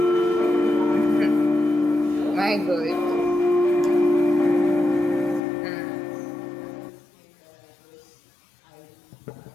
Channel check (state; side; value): drops out; right; at 5.4 s